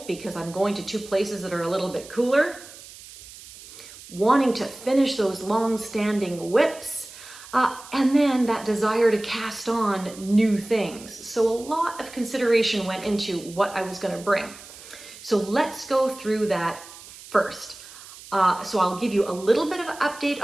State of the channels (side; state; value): right; noise; hiss, 17 dB below the sound